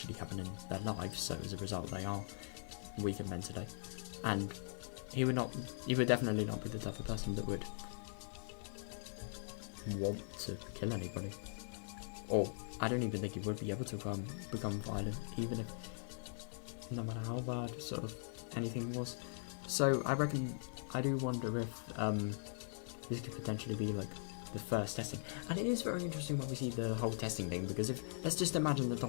happen in their lives, so as a result they are weaker mentally. And he would definitely not be the type of person that would want to kill anybody, or I don't even think he would be able to become violent, even if no matter how bad sort of anything was. So I do wonder if this could potentially be like the first testing. And it is very interesting when we see the whole testing thing, because if let's just imagine that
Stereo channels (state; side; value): silent; right; digital silence